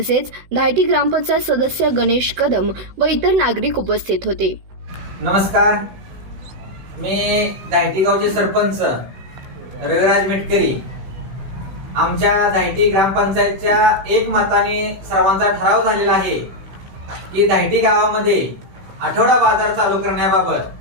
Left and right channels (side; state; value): left; late; 16 ms